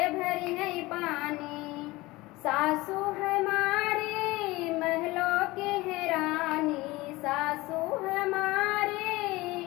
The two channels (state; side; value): quieter; right; 20.6 dB